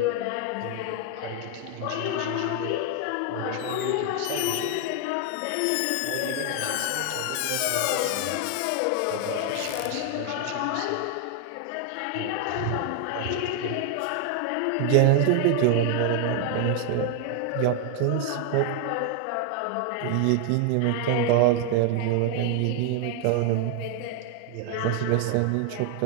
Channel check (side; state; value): both; different; correlation 0.00